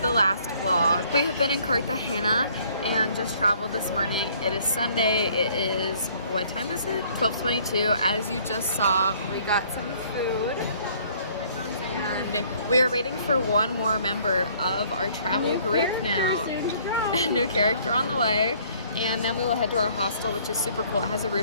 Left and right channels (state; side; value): inverted; both; correlation -0.59